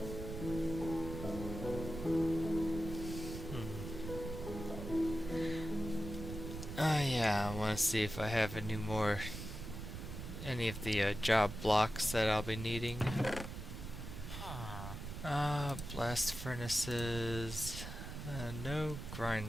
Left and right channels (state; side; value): noise; right; rumble, 8 dB below the sound